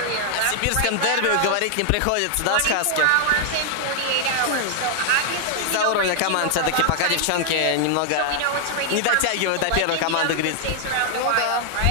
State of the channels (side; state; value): both; different; correlation -0.01